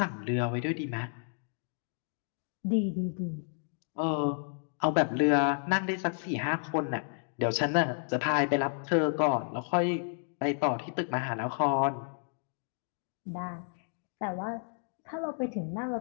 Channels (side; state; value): right; silent; 56 dB below the other